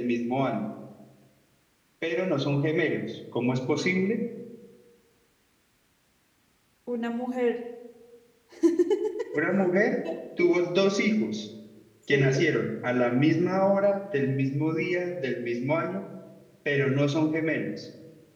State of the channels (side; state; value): both; identical; correlation 1.00